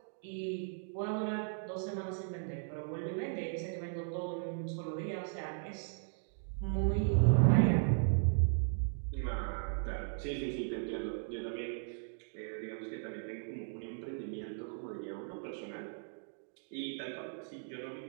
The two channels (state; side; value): silent; left; digital silence